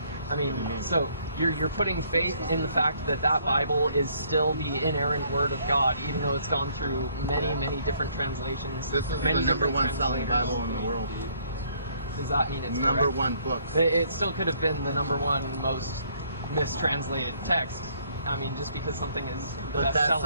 I mean, so you're putting faith in the fact that that Bible is still the inerrant Word of God, even though it's gone through many different translations. This is many the number one selling Bible in the world. Does that mean it's number correct? one book? It still could have been the number one most mistranslated text. I mean, just because something is the best selling. But that's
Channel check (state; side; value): inverted; both; correlation -0.65